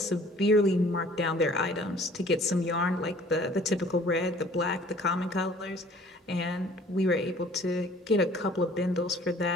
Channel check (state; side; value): normal; both; correlation 0.53